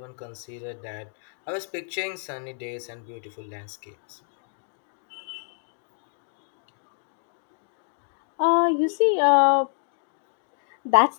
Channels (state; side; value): silent; right; 59 dB below the other